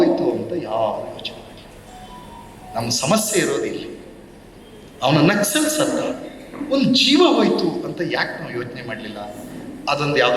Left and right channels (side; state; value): both; identical; correlation 1.00